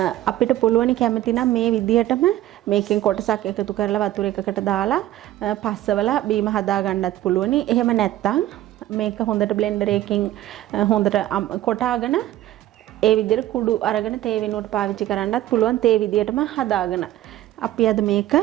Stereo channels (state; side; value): quieter; left; 14.1 dB